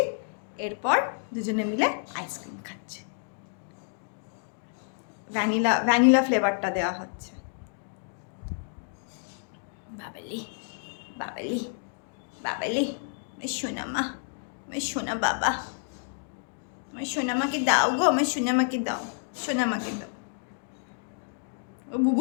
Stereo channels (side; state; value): right; silent; 58 dB below the other